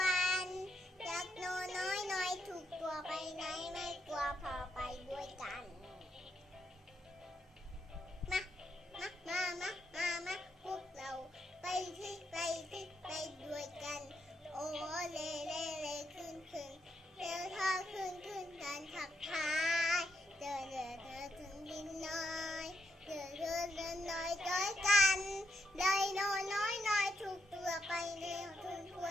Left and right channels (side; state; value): both; normal; correlation 0.79